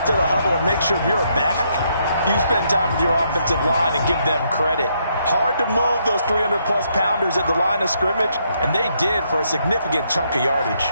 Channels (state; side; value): inverted; both; correlation -0.74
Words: to the huddle and make sure if you're a back, you spend time with your offensive line and give them credit. Hard to move those 300-plus pounders at the line of scrimmage, and they did for a significant chunk of